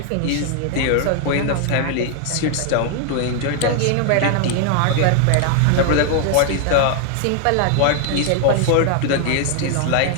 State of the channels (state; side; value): different; both; correlation 0.00